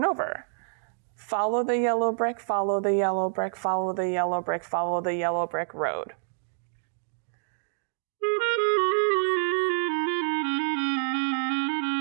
over. Follow the yellow brick, follow the yellow brick, follow the yellow brick, follow the yellow brick road.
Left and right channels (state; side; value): silent; left; digital silence